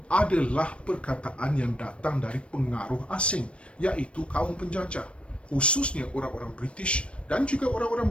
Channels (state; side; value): late; right; 0.060 ms